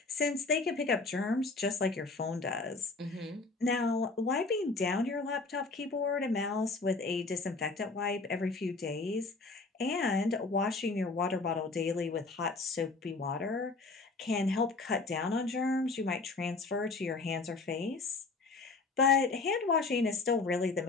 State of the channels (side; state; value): right; quieter; 3.8 dB